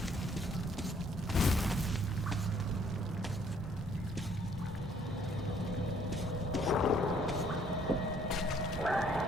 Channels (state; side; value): normal; both; correlation 0.63